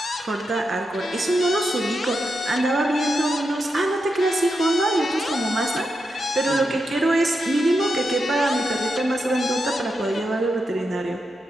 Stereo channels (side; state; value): both; normal; correlation 0.86